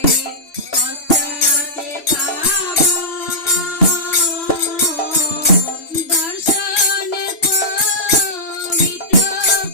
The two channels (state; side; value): late; right; 3.0 ms